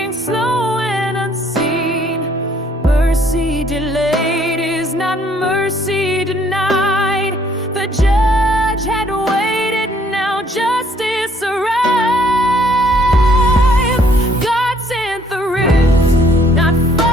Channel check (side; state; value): both; normal; correlation 0.64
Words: slow and unseen. Mercy delayed is not mercy denied. The judge had waited, now justice arrived. God sent the rift, not